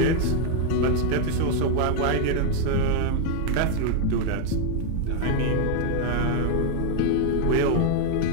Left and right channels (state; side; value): different; both; correlation 0.00